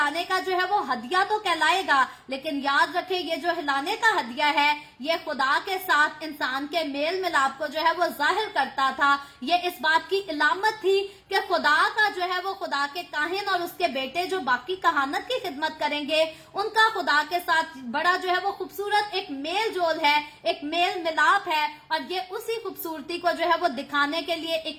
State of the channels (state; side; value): identical; both; correlation 1.00